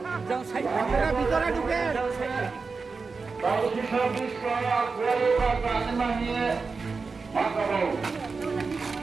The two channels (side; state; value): left; quieter; 4.5 dB